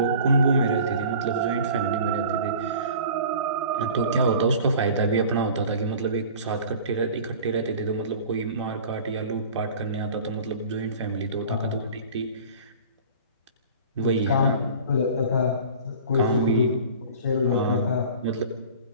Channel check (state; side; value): inverted; both; correlation -0.42